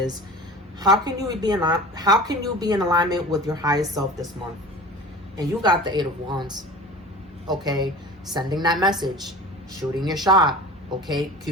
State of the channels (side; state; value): both; normal; correlation 0.38